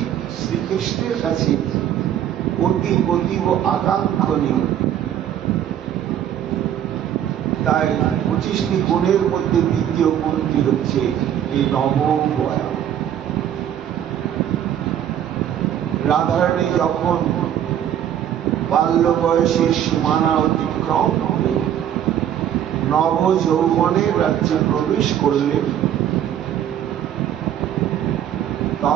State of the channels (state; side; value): quieter; left; 10.4 dB